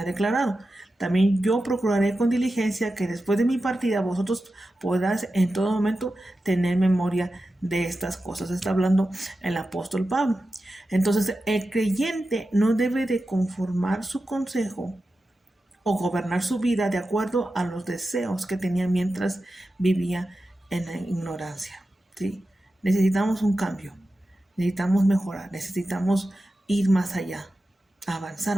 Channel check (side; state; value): both; normal; correlation 0.92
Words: declarado. También yo procuraré con diligencia que después de mi partida vosotros podáis en todo momento tener memoria de estas cosas. Está hablando el apóstol Pablo. Entonces, el creyente no debe de conformar su consejo o gobernar su vida de acuerdo a los deseos que tenía mientras vivía en la ignorancia. ¿Sí? Necesitamos un cambio, necesitamos mejorar, necesitamos ir más allá, avanzar